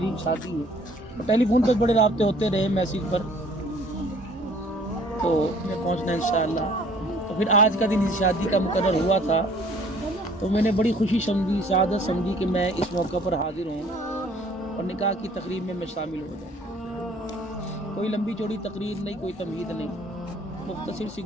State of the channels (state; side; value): normal; both; correlation 0.56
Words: شادی ہے۔ ٹیلی فون پر بڑے رابطے ہوتے رہے، میسیج پر، تو میں پہنچنا انشاءاللہ۔ تو پھر آج کا دن شادی کا مقرر ہوا تھا، تو میں نے بڑی خوشی سمجھی، سعادت سمجھی کہ میں اس موقع پر حاضر ہوں اور نکاح کی تقریب میں شامل ہو جاؤں۔ کوئی لمبی چوڑی تقریر نہیں، کوئی تمہید نہیں، مختصر سی